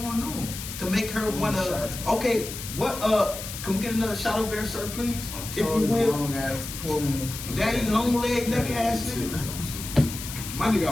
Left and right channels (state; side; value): noise; left; hiss, 9 dB below the sound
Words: on to make her wanna? Okay, what? Can we get another shot over there, sir, please? If you will. Long ass, daddy, long leg, neck ass nigga. My nigga